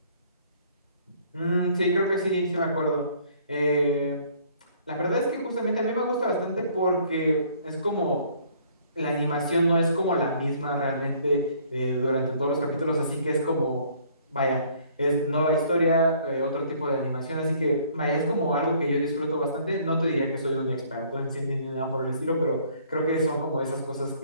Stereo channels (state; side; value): inverted; both; correlation -0.59